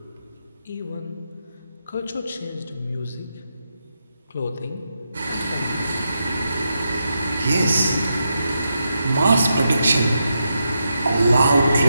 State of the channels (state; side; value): inverted; both; correlation -0.85